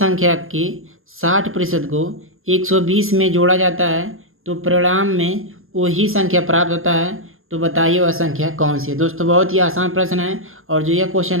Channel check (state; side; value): late; left; 0.61 ms